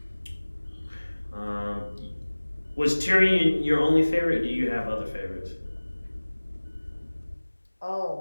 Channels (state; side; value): inverted; both; correlation -1.00